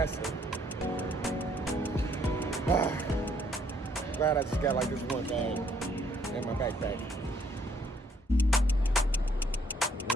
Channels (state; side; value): normal; both; correlation 0.66